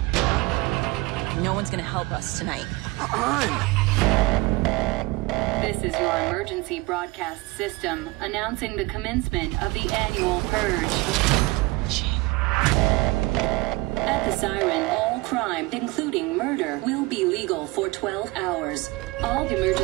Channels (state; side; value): quieter; left; 23.0 dB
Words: No one's gonna help us tonight. This is your emergency broadcast system announcing the commencement of the annual Purge. At the siren, all crime, including murder, will be legal for 12 hours. All